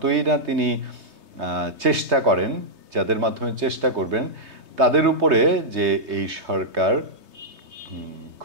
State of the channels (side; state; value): left; late; 3.2 ms